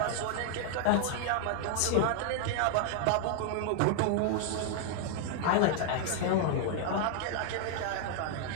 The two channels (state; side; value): different; both; correlation 0.00